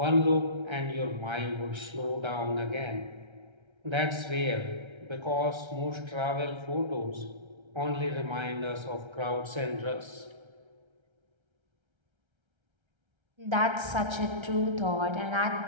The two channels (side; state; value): left; late; 1.3 ms